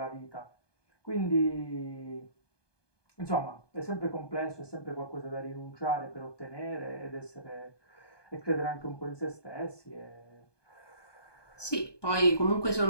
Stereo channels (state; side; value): late; right; 1.2 ms